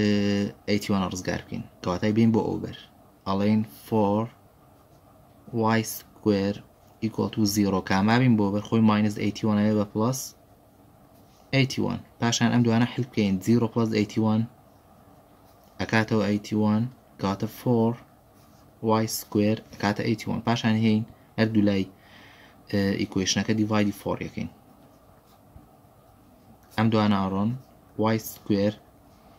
رزقار بكين كواتاي بين بو أوبر ألين 4y square equal to 0 كاما بين بو أوبر خوي minus 81 أبا plus 81 باشان أمدو أنا حل بكين 0 plus 81 أكاتو 81 كاتا 4y square أكاتا 81 باشان هين هردو لاي equation أكا divide 4 يكين ئەم دوانە ئاڕۆن y square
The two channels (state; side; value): identical; both; correlation 1.00